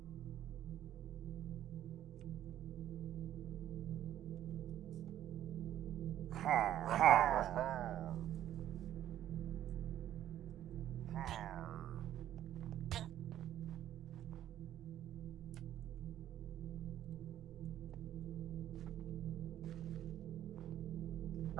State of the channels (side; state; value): left; quieter; 11.9 dB